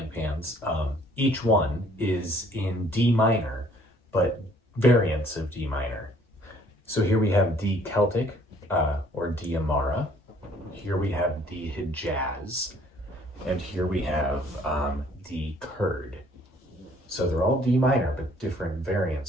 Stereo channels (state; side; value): normal; both; correlation 0.60